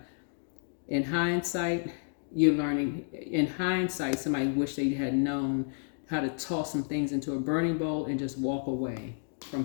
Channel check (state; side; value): silent; right; digital silence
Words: in hindsight, somebody wish they had known how to toss some things into a burning bowl and just walk away